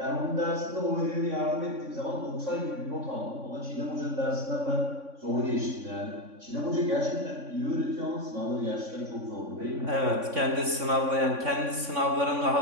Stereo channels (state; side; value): late; left; 3.6 ms